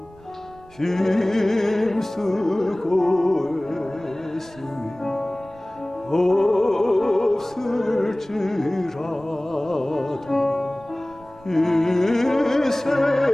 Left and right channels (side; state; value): right; noise; rumble, 25 dB below the sound